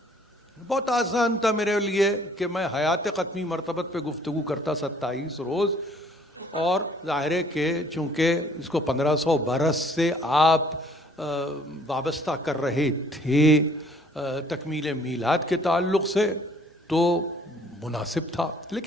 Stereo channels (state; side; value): normal; both; correlation 0.59